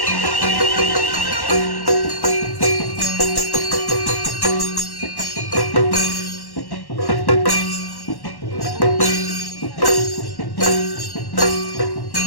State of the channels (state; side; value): late; right; 1.1 ms